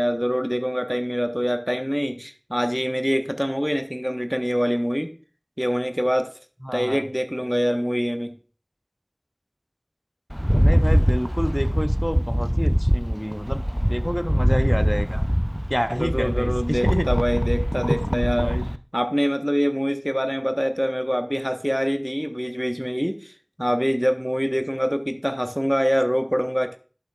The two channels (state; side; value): identical; both; correlation 1.00